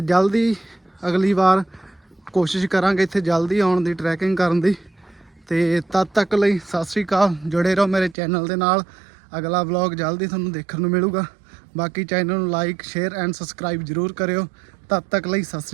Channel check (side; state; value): left; drops out; at 8.2 s